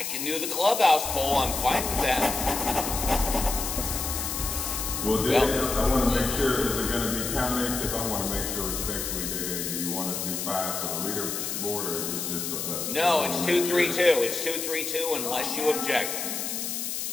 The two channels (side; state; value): left; noise; hiss, 3 dB below the sound